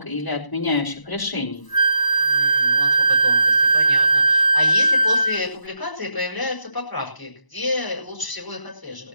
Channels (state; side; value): late; right; 1.0 ms